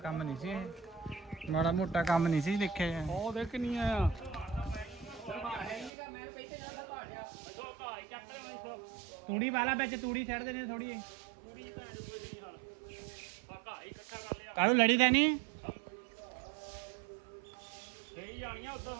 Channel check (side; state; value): left; drops out; at 5.9 s